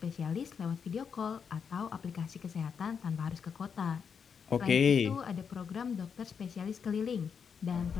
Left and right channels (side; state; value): right; quieter; 6.6 dB